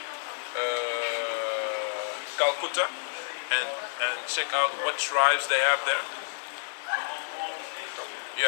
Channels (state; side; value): silent; right; 58 dB below the other